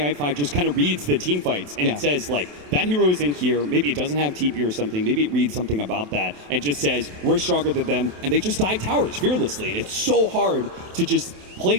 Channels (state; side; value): late; left; 27 ms